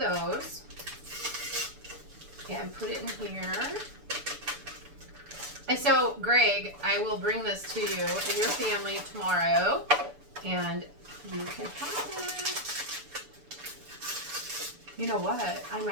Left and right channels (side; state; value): left; late; 6.9 ms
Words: and put it in here. And so, Greg, I will bring this to you and your family tomorrow, and you can have it. You know what? I